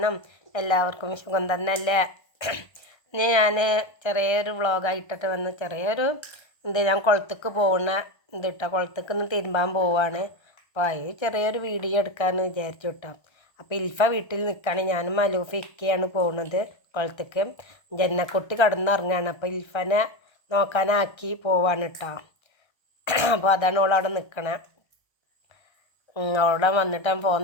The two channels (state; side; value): late; right; 1.3 ms